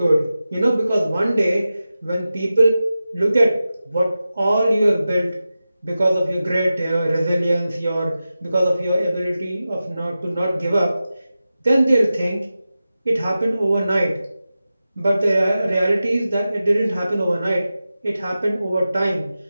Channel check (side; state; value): both; inverted; correlation -0.93